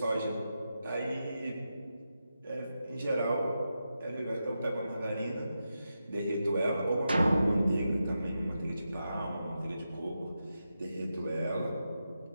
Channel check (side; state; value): both; inverted; correlation -0.88